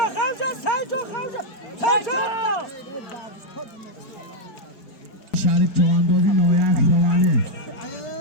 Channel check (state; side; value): late; right; 4.8 ms